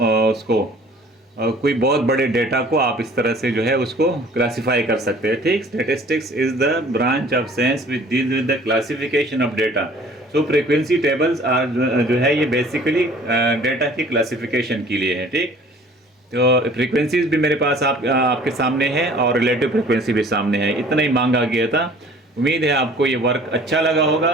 उसको कोई बहुत बड़े डेटा को आप इस तरह से जो है उसको क्लासिफाई कर सकते हैं, ठीक। Statistics is the branch of science which deals with the classification of data. So frequency tables are जो है ये बेसिकली डेटा की क्लासिफिकेशन के लिए है, ठीक। तो फ्रीक्वेंसीज भी मेरे पास आपके सामने है और रिलेटिव फ्रीक्वेंसी भी सामने है। इतना ही मांगा गया था। उम्मीद है आपको ये वर्क अच्छा लगा होगा,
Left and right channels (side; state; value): both; normal; correlation 0.51